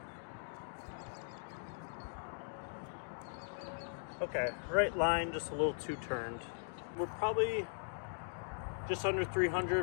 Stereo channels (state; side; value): silent; right; digital silence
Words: Okay, right line, just a little too turned. We're probably just under